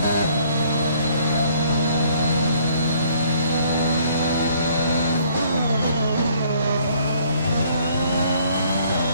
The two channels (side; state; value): both; inverted; correlation -0.62